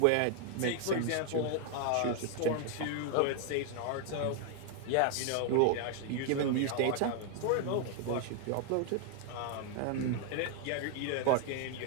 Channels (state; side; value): different; both; correlation 0.00